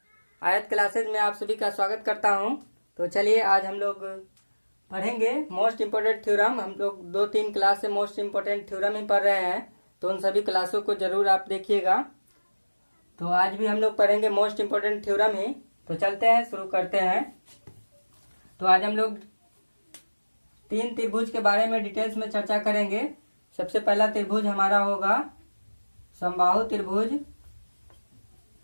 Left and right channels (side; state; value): both; inverted; correlation -1.00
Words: आयत classes में आप सभी का स्वागत करता हूं। तो चलिए आज हम लोग पढ़ेंगे मोस्ट इम्पोर्टेंट थ्योरम। हम लोग 2-3 क्लास से मोस्ट इम्पोर्टेंट थ्योरम ही पढ़ रहे हैं, तो उन सभी क्लासों को जरूर आप देखिएगा। तो आज भी हम लोग पढ़ेंगे मोस्ट इम्पोर्टेंट थ्योरम ही। तो चलते हैं, शुरू करते हैं। तो आज हम लोग 3 त्रिभुज के बारे में डिटेल्स में चर्चा करेंगे। सबसे पहला त्रिभुज हमारा होगा समबाहु त्रिभुज,